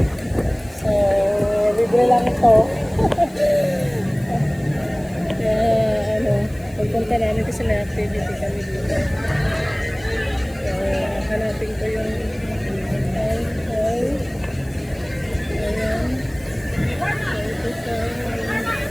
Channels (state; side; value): noise; left; hiss, 26 dB below the sound